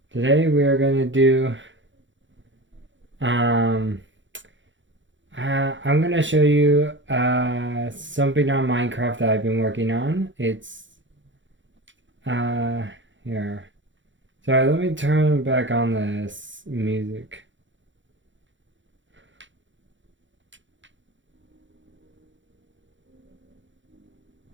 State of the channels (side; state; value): left; late; 0.55 ms